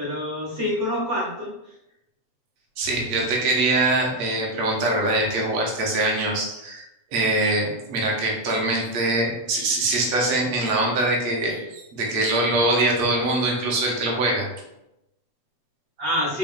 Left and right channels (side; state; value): left; late; 8.2 ms